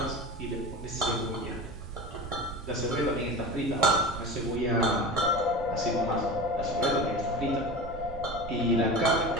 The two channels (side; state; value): right; noise; rumble, 12 dB below the sound